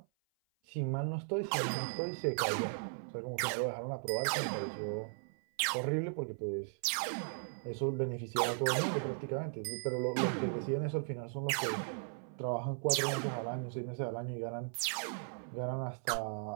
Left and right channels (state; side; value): silent; left; 53 dB below the other